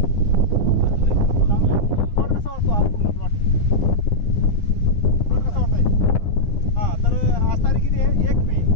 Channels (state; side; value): late; right; 9.9 ms